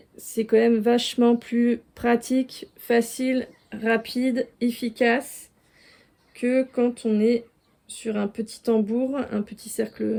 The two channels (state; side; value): identical; both; correlation 1.00